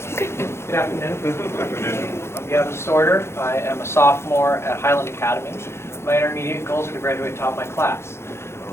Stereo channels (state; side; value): late; right; 0.12 ms